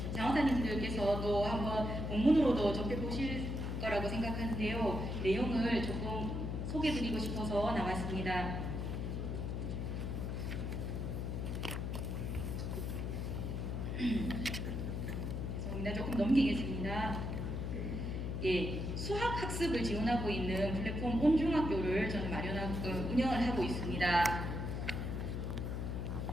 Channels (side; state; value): left; noise; hum, 2 dB below the sound